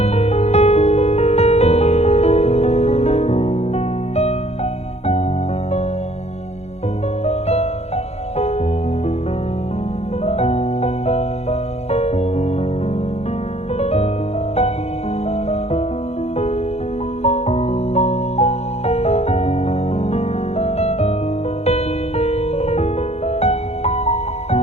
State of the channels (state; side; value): late; right; 0.31 ms